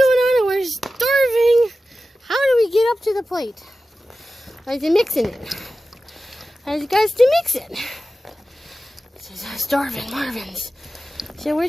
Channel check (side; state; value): both; normal; correlation 0.94